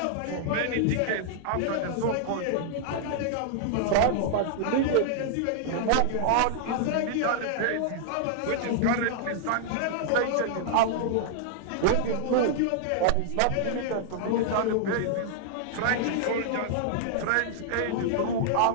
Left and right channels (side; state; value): both; different; correlation -0.01